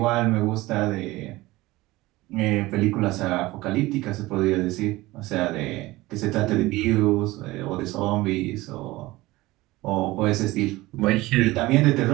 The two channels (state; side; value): quieter; left; 19.3 dB